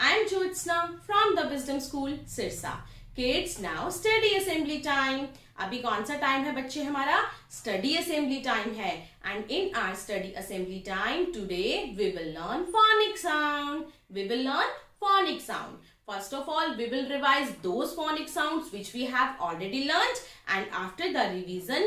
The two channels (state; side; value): identical; both; correlation 1.00